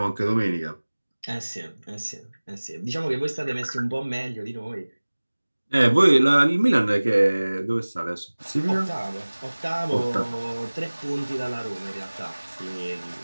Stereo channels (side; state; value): both; inverted; correlation -1.00